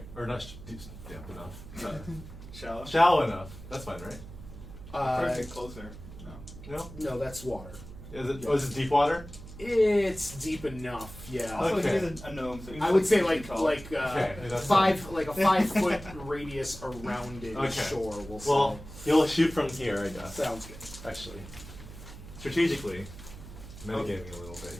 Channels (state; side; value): noise; right; hum, 14 dB below the sound